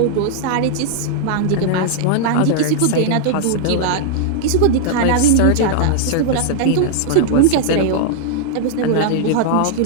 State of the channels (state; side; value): different; both; correlation -0.01